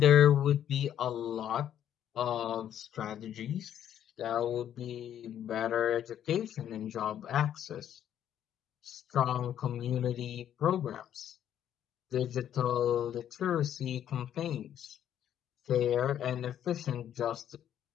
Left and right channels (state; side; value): quieter; right; 10.3 dB